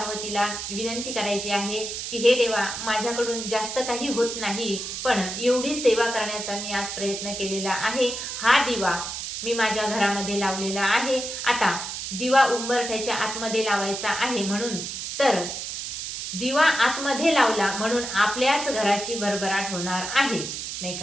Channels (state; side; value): noise; right; hiss, 6 dB below the sound